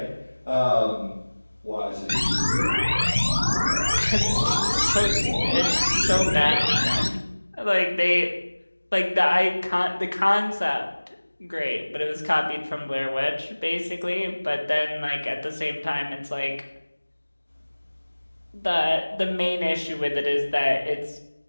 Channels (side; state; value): both; inverted; correlation -1.00